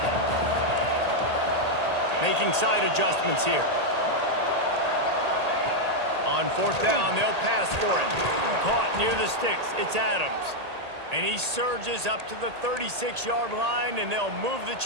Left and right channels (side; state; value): left; late; 1.8 ms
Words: Making side adjustments here. On fourth down, they'll pass for it. Caught near the sticks. It's Adams. And he surges up to the 36-yard line, and they'll move the